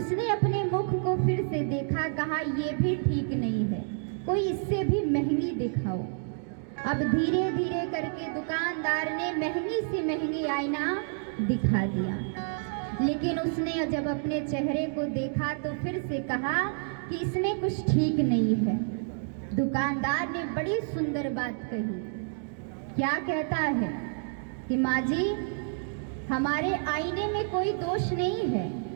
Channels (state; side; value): silent; left; 58 dB below the other